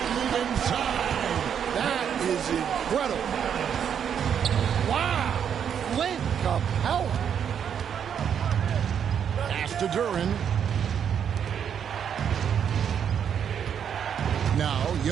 move inside. That is incredible. Wow. Clint Capella. Pass to Duren. Now,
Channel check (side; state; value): left; quieter; 8.2 dB